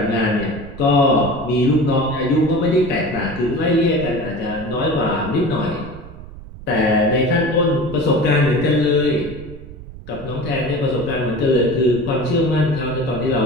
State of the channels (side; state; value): right; noise; rumble, 15 dB below the sound